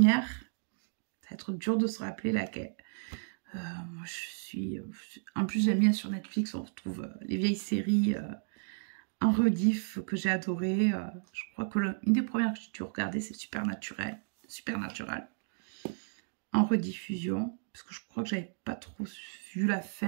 ça va être dur de se rappeler laquelle. Moi, je suis... En plus, j'aime bien sur Netflix, on retrouve les vieilles séries en rediff que j'ai adoré. Je crois que une des premières que j'ai dû regarder, c'est Supernatural. En rediffusion. Parce que je crois que j'avais pas trop vu la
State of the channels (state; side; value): silent; left; digital silence